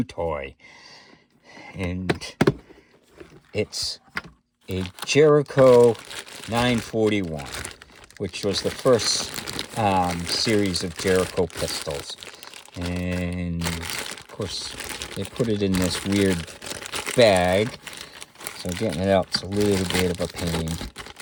toy, and it's a Jericho 941, which was the first series of Jericho pistols. And, of course, they put it in this weird bag, so getting it out's a little bit of a pain.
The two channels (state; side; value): identical; both; correlation 1.00